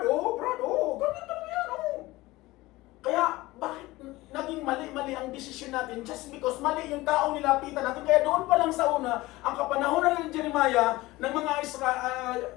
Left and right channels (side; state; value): right; quieter; 19.5 dB